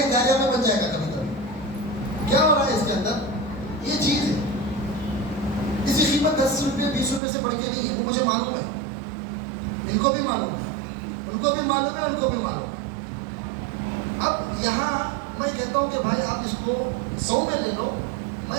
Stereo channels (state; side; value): drops out; left; at 7.2 s